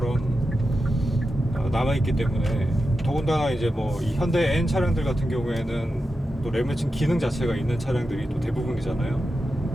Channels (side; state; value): both; normal; correlation 0.90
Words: 남아있기 때문에, 더군다나 이제 뭐 이 현대 N 차량들 같은 경우에는 또 레브 매칭 기능 자체가 있는 차량들이 또 대부분이잖아요.